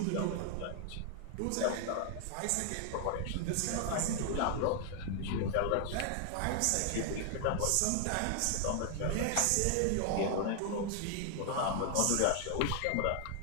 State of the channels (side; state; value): both; different; correlation 0.00